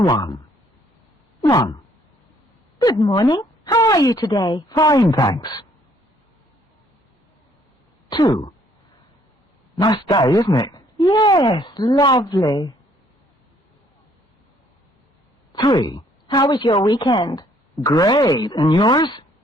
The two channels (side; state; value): both; normal; correlation 0.64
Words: 1. Good morning. How are you today? Fine, thanks. 2. Nice day, isn't it? Yes, lovely. 3. How was your weekend? Great. And yours?